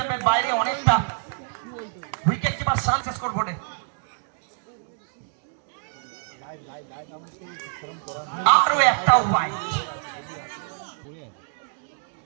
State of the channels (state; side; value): silent; left; digital silence